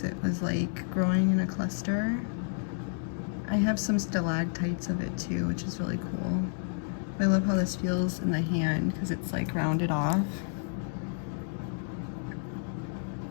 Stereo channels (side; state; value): right; silent; digital silence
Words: it was like growing in a cluster. I have some stalactites of it too, which is really cool. I love how this feels in the hand because it's like rounded off.